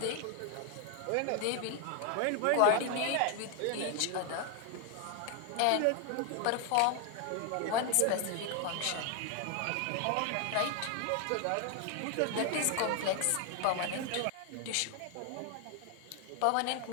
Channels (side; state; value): both; different; correlation 0.01